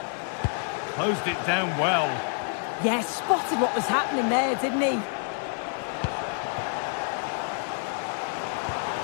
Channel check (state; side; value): silent; right; 60 dB below the other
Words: Closed it down well. Yeah, spotted what was happening there, didn't he?